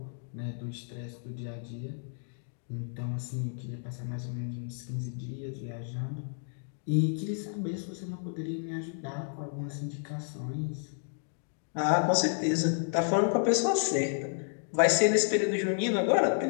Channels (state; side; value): silent; right; digital silence